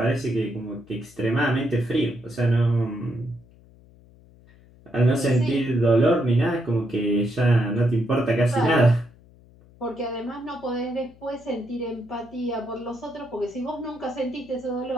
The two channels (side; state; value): left; noise; hum, 26 dB below the sound